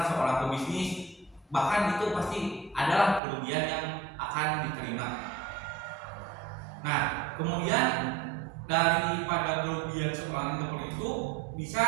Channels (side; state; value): left; drops out; at 3.2 s